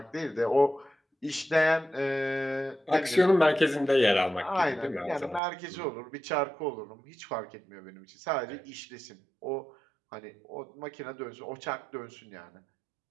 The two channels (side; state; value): left; drops out; at 5.4 s